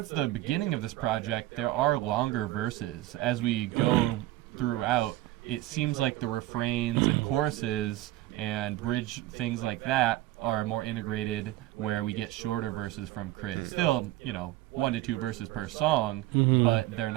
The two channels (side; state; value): left; quieter; 16.4 dB